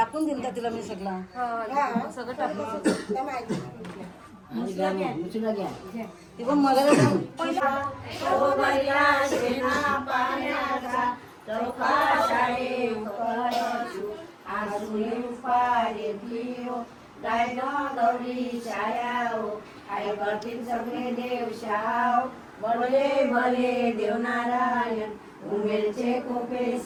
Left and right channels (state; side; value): identical; both; correlation 1.00